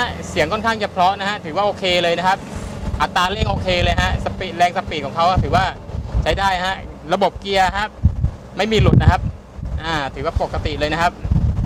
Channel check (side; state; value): both; identical; correlation 1.00